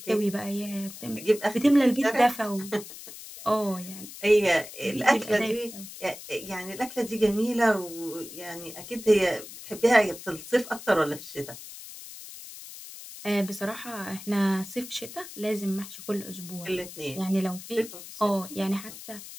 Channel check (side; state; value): left; noise; hiss, 14 dB below the sound